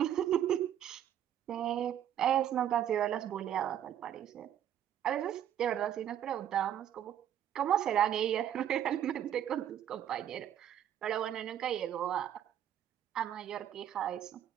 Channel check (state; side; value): quieter; left; 10.5 dB